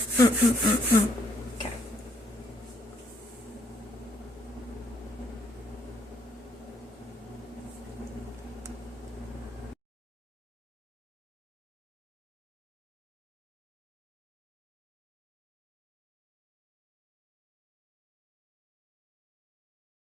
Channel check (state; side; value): normal; both; correlation 0.70